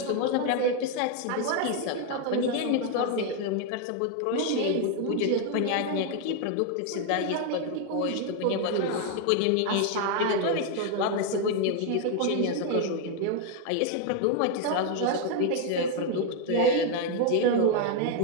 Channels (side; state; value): both; different; correlation 0.01